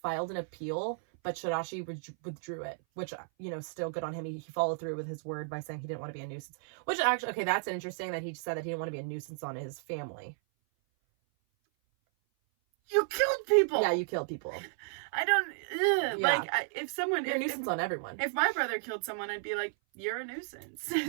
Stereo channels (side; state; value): left; silent; 56 dB below the other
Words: an appeal, but Shirashi withdrew it, which, still good on him. He followed through with his word by saying he didn't want to be a nuisance. Which actually, okay, that's interesting that he said that he didn't want to be a nuisance on his family. You killed people! Yeah, you killed people. I don't... Yeah. If someone... You're a nuisance on everyone. If my brother killed someone, I'd be like, you're a nuisance.